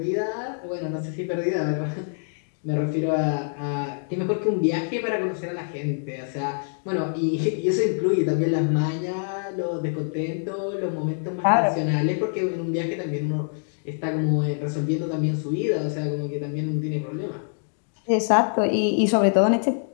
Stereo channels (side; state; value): right; silent; digital silence